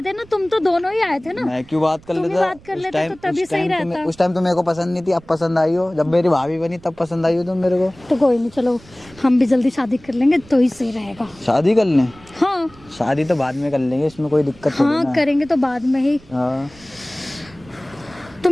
ना, तुम तो दोनों ही आए थे ना। मैं क्यों बात कर तुम ही लेता? बात कर लेते तो तभी सही रहता। उस टाइम तो मेरे को पसंद नहीं थी, अब पसंद आई हो। जब मेरी भाभी बनी तब पसंद आई हो तुम मेरे को। तो कोई नहीं, चलो हम भी जल्दी शादी कर लेंगे तो ही सही रहेगा। शादी कर लें? हाँ शादी तो बाद में कर लेंगे, इसमें कोई दिक्कत नहीं हाँ, है। करेंगे तो बाद में ही। हाँ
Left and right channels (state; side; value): noise; right; rumble, 24 dB below the sound